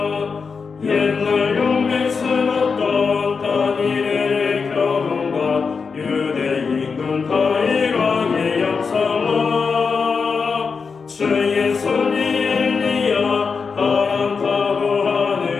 옛날 용맹스럽던 다니엘의 결혼과 유대인군 다윗왕의 역사와 주의 손이 엘리야 바람 타고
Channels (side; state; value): right; quieter; 5.2 dB